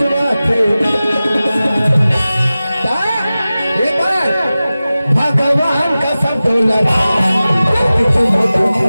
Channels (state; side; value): inverted; both; correlation -0.96